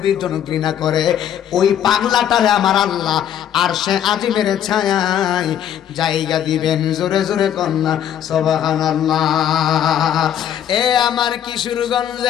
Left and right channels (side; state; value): right; quieter; 10.0 dB